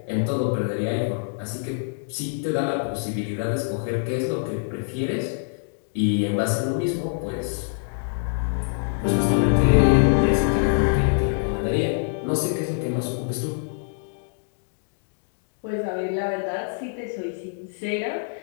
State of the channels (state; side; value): silent; right; digital silence